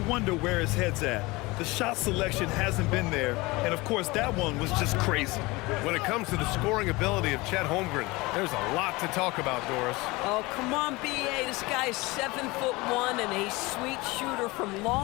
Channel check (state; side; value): quieter; right; 22.8 dB